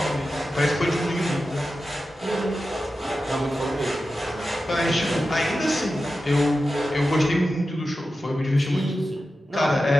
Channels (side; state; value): both; normal; correlation 0.92